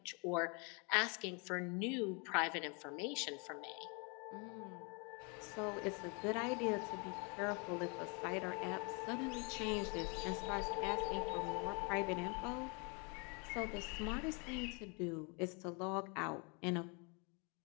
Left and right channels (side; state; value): right; quieter; 33.0 dB